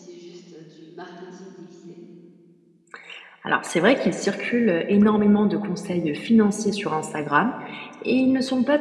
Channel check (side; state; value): both; identical; correlation 1.00